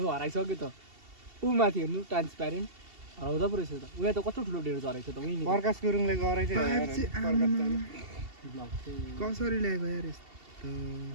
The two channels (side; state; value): left; late; 2.7 ms